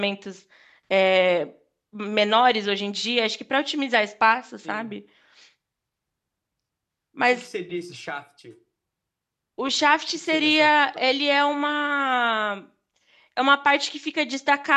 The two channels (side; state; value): both; identical; correlation 1.00